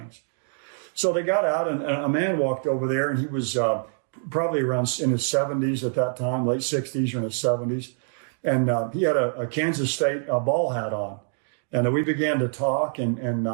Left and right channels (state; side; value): silent; left; digital silence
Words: So they got out, and a man walked over there, and he was probably around in his 70s at that time, late 60s or in his 70s. And he had a Kansas State ball hat on. And we began to talk, and